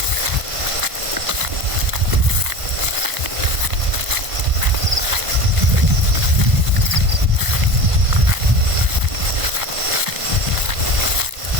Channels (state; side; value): late; left; 1.5 ms